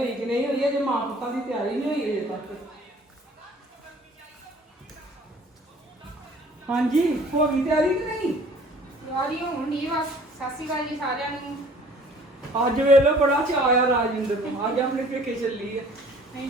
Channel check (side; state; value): both; normal; correlation 0.52